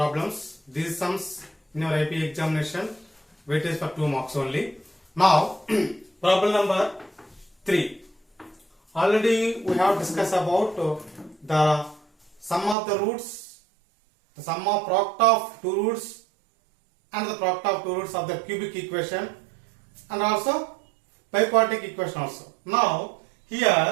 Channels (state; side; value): drops out; left; at 12.8 s